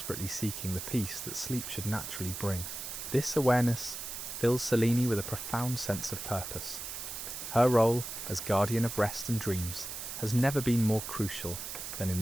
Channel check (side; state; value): right; noise; hiss, 7 dB below the sound